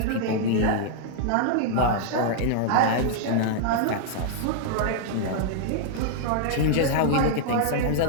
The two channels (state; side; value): different; both; correlation -0.01